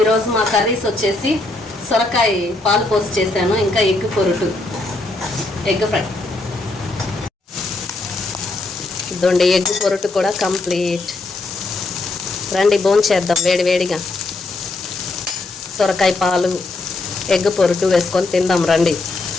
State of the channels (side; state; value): right; quieter; 3.1 dB